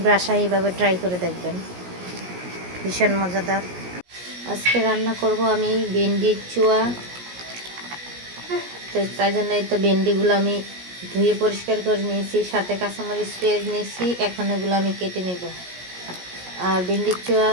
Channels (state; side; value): late; left; 17 ms